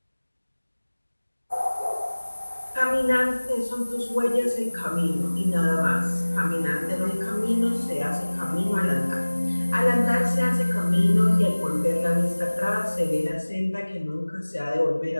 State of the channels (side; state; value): both; inverted; correlation -1.00